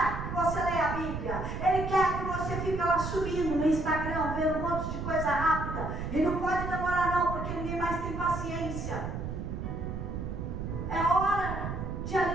que você leia a Bíblia. Ele quer que você fique lá subindo no Instagram, vendo um monte de coisa rápida. E não pode demorar não, porque ninguém mais tem paciência. É hora de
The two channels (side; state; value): right; noise; rumble, 5 dB below the sound